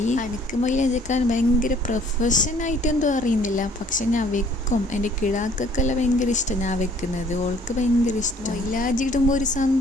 എനിക്ക് മൈലാഞ്ചി വെക്കാൻ ഭയങ്കര പ്രൊഫഷനായിട്ട് എന്തോ അറിയുന്നില്ല, പക്ഷെ ഞാൻ വെക്കും. എൻ്റെ കിടാക്കൊക്കെല്ലാം ഭയങ്കര ഇഷ്ടം ഞാൻ വെക്കുന്നത്, ഓൾക്ക് ഭയങ്കര ഇഷ്ടം. മൈലാഞ്ചി ഇടുമ്പോൾ ഒരു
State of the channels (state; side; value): normal; both; correlation 0.58